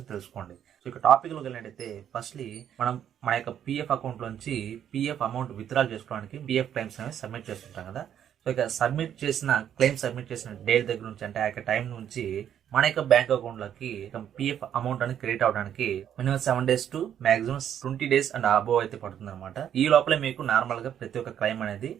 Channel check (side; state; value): left; quieter; 9.7 dB